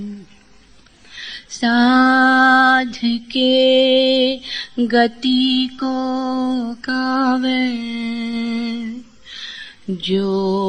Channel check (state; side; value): identical; both; correlation 1.00